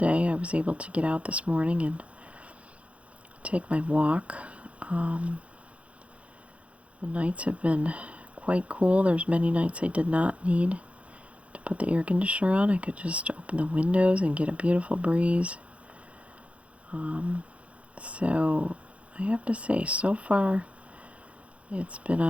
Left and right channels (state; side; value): late; left; 0.063 ms